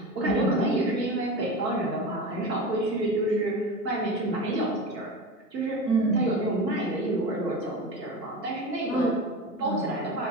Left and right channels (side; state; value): both; normal; correlation 0.27